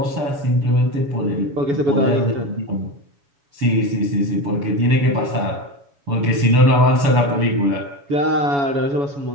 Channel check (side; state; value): left; late; 7.1 ms